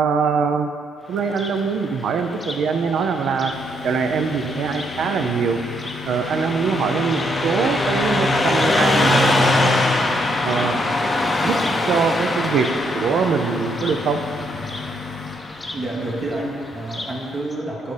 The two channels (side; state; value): both; normal; correlation 0.74